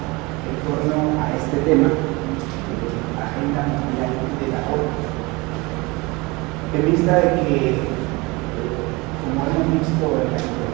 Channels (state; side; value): quieter; left; 24.7 dB